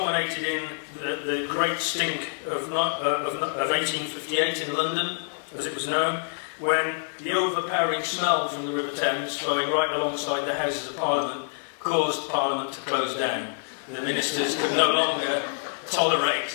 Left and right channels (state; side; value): silent; right; digital silence